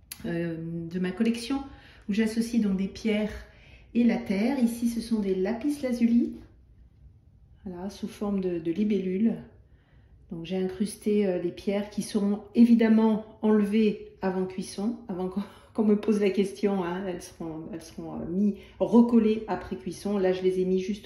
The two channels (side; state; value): both; identical; correlation 1.00